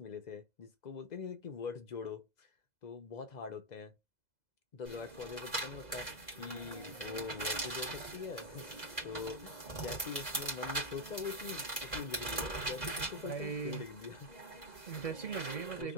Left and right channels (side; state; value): right; late; 2.0 ms